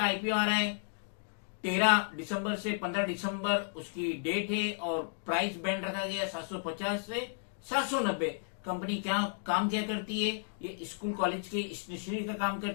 आईपीओ आ रहा है, 13 दिसंबर से 15 दिसंबर उसकी डेट है और प्राइस बैंड रखा गया 750 से 790। कंपनी क्या काम क्या करती है? ये स्कूल कॉलेज के स्टेशनरी का काम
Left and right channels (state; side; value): silent; right; digital silence